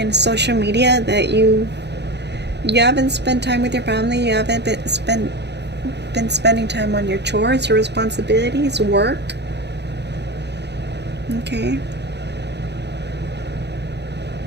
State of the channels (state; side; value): late; left; 0.50 ms